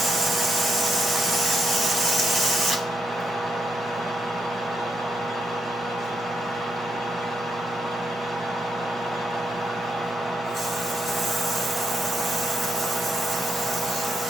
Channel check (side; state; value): both; normal; correlation 0.80